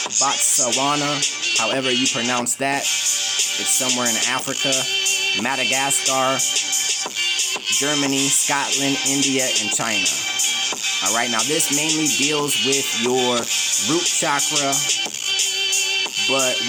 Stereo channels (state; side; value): identical; both; correlation 1.00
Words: Botswana, however you pronounce that. It's somewhere in Africa, Madagascar, Germany, Scotland, India, and China. All right, now this mainly deals with your root chakra, but